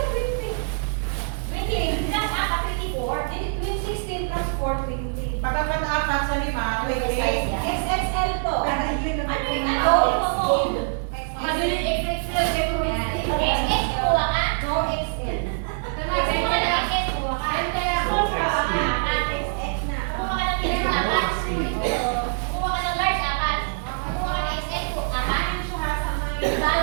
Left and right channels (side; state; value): left; silent; 62 dB below the other